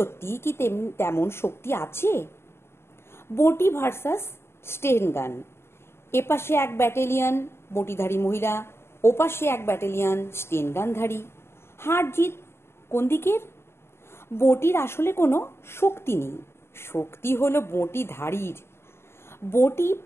কি তেমন শক্তি আছে? বঁটি ভার্সাস স্টেন গান। এপাশে এক ব্যাটালিয়ন বঁটিধারী মহিলা, ওপাশে এক ব্যাটালিয়ন স্টেন গানধারী। হার জিত কোন দিকের? বঁটির আসলে কোনো শক্তি নেই, শক্তি হলো বঁটিধারীর। বঁটি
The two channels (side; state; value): right; late; 0.12 ms